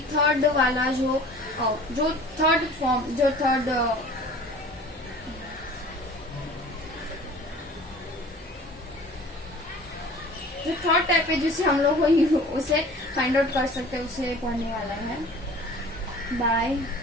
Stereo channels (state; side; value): normal; both; correlation 0.45